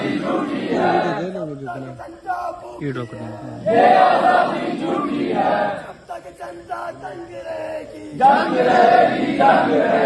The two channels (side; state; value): both; identical; correlation 1.00